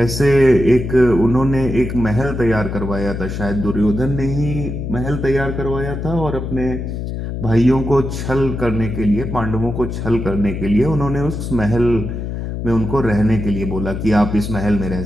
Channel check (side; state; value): left; noise; hum, 5 dB below the sound